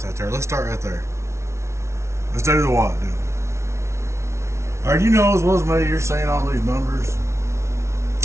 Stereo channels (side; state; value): left; late; 0.13 ms